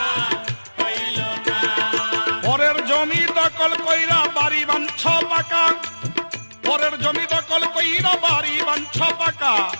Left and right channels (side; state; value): both; inverted; correlation -1.00